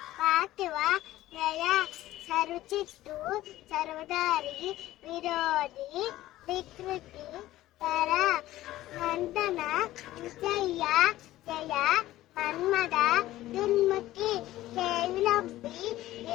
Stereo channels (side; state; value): right; quieter; 15.4 dB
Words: పార్థివ జయ సరుచిత్తు సర్వదారి విరోధి వికృతి తర నందన విజయ జయ మన్మద దున్ముఖి కేవిలంబి